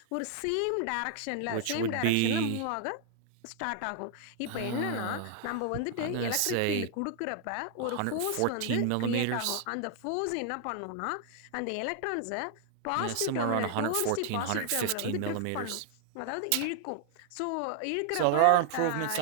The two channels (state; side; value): different; both; correlation 0.00